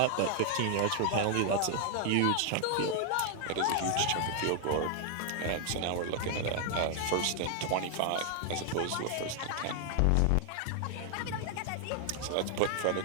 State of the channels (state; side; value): different; both; correlation 0.00